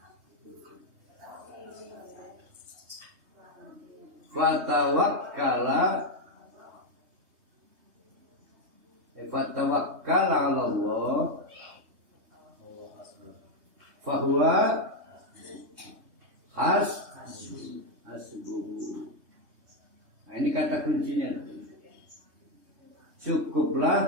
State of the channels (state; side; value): late; left; 3.2 ms